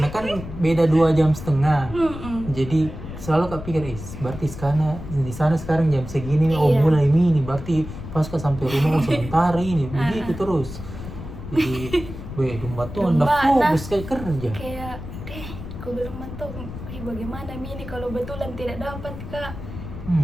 kan beda 2,5 jam. Jadi selalu Kak pikir, berarti di sana sekarang jam segini nih, Iya. mulai ini, berarti pas Kak sampai rumah sementara ini, begitu terus. Jadi, domba tuh udah fokus kayak kerja. Kayak aku bilang mentok, bagaimana mi ini kalau betulan tidak dapat Kak.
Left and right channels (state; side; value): noise; left; rumble, 11 dB below the sound